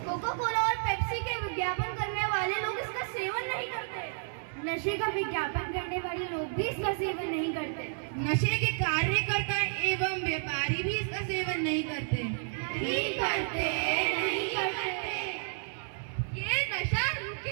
कोका कोला और पेप्सी के विज्ञापन करने वाले लोग इसका सेवन नहीं करते। नशे का विज्ञापन करने वाले लोग भी इसका सेवन नहीं करते। नशे के कार्यकर्ता एवं व्यापारी भी इसका सेवन नहीं करते। नहीं करते, नहीं करते। ये नशा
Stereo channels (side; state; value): left; silent; 57 dB below the other